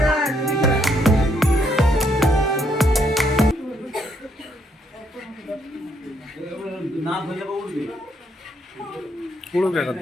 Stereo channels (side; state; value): both; normal; correlation 0.72